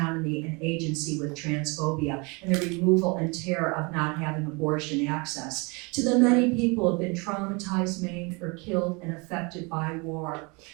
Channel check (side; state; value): left; quieter; 29.3 dB